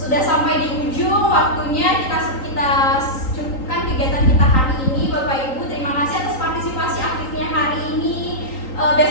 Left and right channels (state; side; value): late; right; 3.9 ms